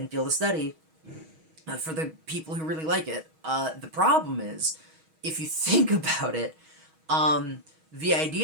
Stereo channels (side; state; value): left; late; 6.3 ms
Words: field of study for the people who really like it. The problem is, if you think about it, the